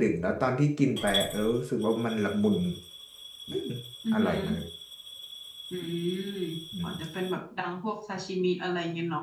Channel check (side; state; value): both; identical; correlation 1.00